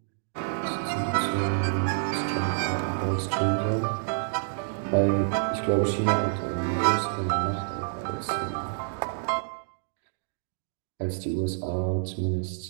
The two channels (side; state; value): left; silent; digital silence